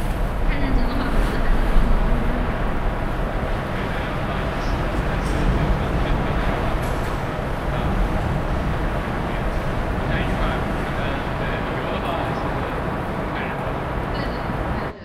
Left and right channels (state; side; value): identical; both; correlation 1.00